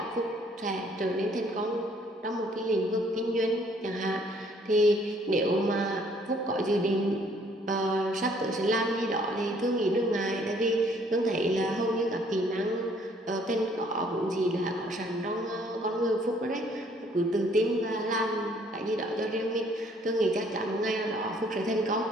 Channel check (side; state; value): both; normal; correlation 0.62